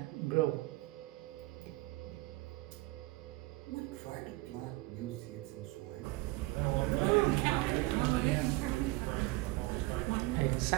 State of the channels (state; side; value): quieter; left; 21.4 dB